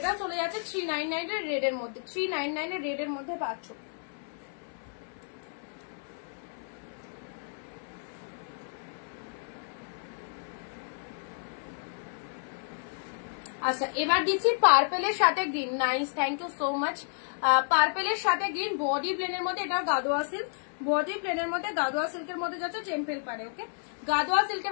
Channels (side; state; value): right; silent; digital silence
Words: চলে যাচ্ছে 399 এর রেড এর মধ্যে, 399 এর রেড এর মধ্যে পাচ্ছ। আচ্ছা এবার দিচ্ছি পার্পেলের সাথে green, nice thank you so much. পার্পেলের সাথে গ্রিন, বডি প্লেনের মধ্যে, এটা গাদোয়া সিল্ক, বডি প্লেনের মধ্যে গাদোয়া সিল্কের মধ্যে যাচ্ছে টেম্পেল পাড়ে, ওকে গাদোয়া